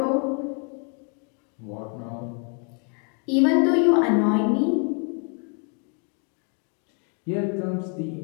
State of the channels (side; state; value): right; quieter; 38.8 dB